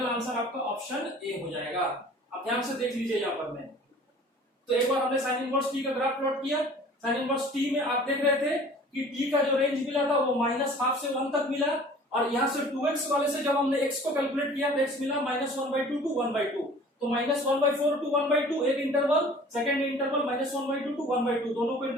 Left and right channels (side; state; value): both; normal; correlation 0.48